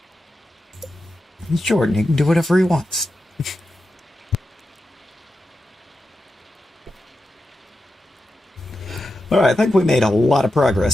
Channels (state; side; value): normal; both; correlation 0.90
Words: He's Jordan, he can do whatever he wants. Alright, I think we made a lot of